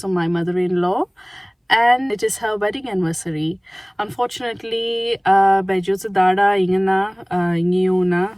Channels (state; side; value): identical; both; correlation 1.00